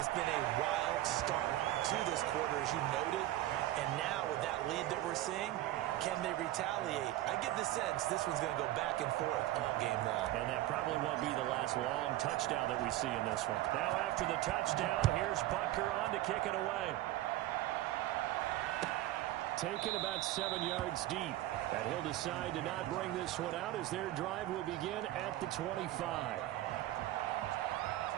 been a wild start to this quarter, as you noted. And now with that lead that we're seeing, can they retaliate? I get the sense this one's going to go back and forth all game long. And that probably won't be the last long touchdown that we see in this one. Now after the touchdown, here's Butker on to kick it away. Taken about 7 yards deep. And he'll decide to not bring this one out as their drive will begin at the 25.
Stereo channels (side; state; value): left; quieter; 15.3 dB